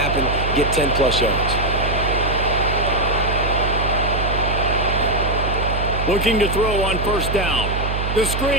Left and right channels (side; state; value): right; noise; hum, 3 dB below the sound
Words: get 10-plus yards. Looking to throw on first down. The